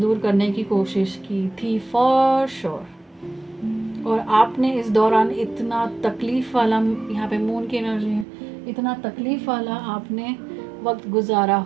करने की कोशिश की थी फॉर श्योर। और आपने इस दौरान इतना तकलीफ़ वाला, यहाँ पे मून की एनर्जी है, इतना तकलीफ़ वाला आपने वक्त गुजारा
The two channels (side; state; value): left; drops out; at 8.2 s